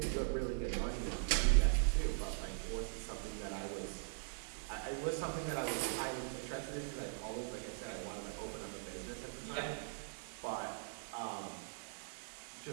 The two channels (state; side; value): silent; left; digital silence